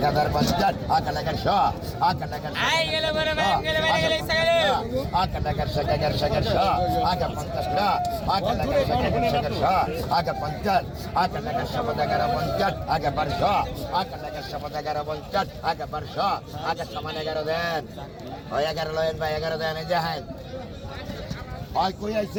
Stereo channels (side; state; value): both; identical; correlation 1.00